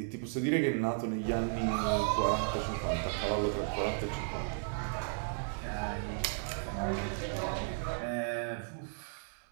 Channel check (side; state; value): left; silent; digital silence